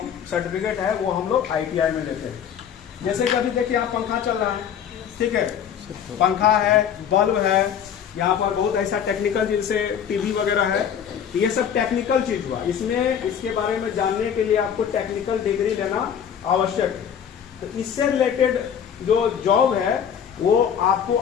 सर्टिफिकेट है, वो हम लोग ITI में लेते हैं। जैसे कि अभी देखिए आप पंखा चल रहा है, ठीक है, पंखा है, बल्ब है, यहाँ पर बहुत ऐसा टेक्निकल जैसे टीवी वगैरह है, ये सब टेक्निकल चीज हुआ। इसमें इसके बारे में जानने के लिए आपको टेक्निकल डिग्री लेना आवश्यक है। तो इससे रिलेटेड जो जॉब है वो आपको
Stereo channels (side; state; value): right; quieter; 8.5 dB